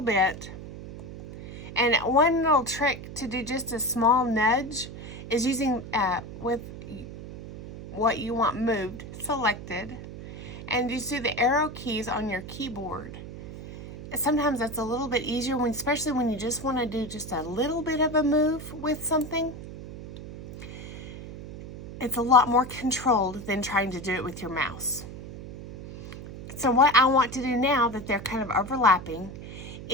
bit. And one little trick to do just a small nudge is using with what you want moved selected, and you see the arrow keys on your keyboard. Sometimes that's a little bit easier, especially when you just want to do just a little bit of a move with something. It's a lot more controlled than trying to do it with your mouse. So what I want to do now that they're kind of overlapping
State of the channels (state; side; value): noise; right; hum, 12 dB below the sound